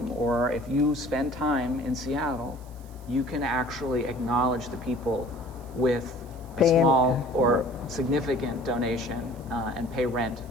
or if you spend time in Seattle, you can actually acknowledge the people with a small or significant donation and pay rent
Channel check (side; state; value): right; noise; hiss, 26 dB below the sound